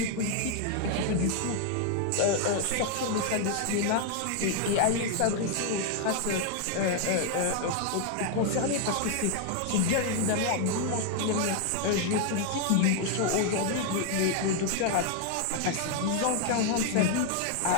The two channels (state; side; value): different; both; correlation 0.00